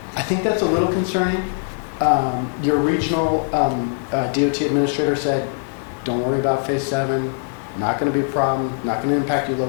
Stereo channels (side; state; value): right; silent; 65 dB below the other